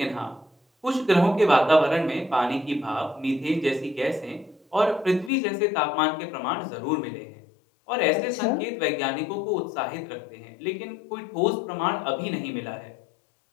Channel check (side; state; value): right; drops out; at 5.3 s